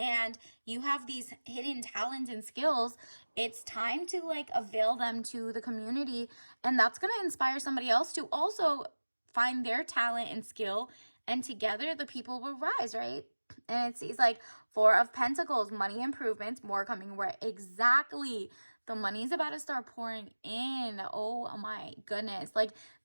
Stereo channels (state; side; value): inverted; both; correlation -1.00